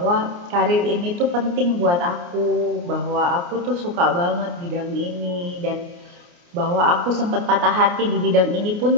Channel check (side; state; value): left; late; 29 ms